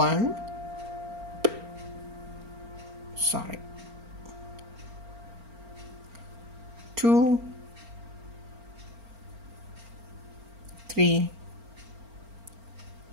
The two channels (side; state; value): left; late; 4.4 ms